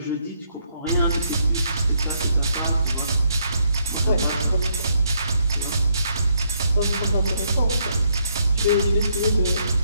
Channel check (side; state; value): both; inverted; correlation -0.73